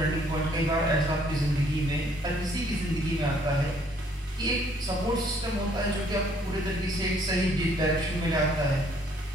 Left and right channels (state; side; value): normal; both; correlation 0.63